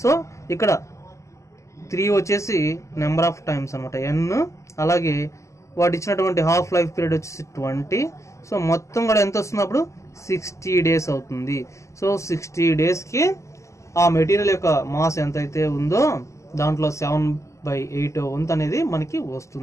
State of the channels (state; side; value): late; right; 0.14 ms